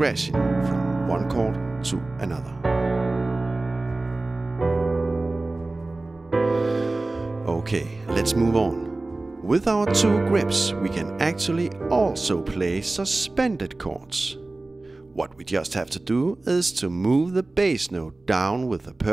from one chord to another. Okay, let's move on. With our 2 grips, we can actually also play suspended chords. What we just have to do is to move the bass note down with the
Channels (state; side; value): quieter; left; 3.1 dB